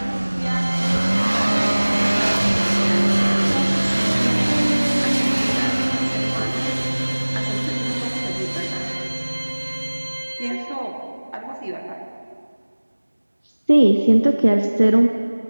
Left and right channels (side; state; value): both; inverted; correlation -1.00